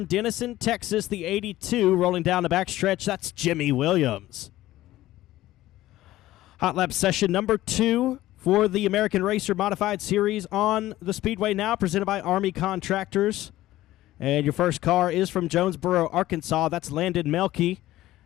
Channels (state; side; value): quieter; right; 15.6 dB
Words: Denison, Texas, the 82, rolling down the backstretch. That's Jimmy Williams. Hot Lap Session number 2 for the American Racer Modified Series on the Speedway now, presented by Army Contractors. And your first car is from Jonesboro, Arkansas. That's Landon Melke.